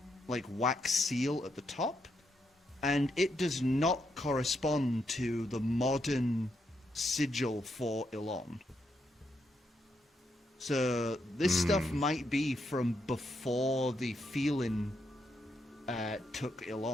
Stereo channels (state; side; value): normal; both; correlation 0.80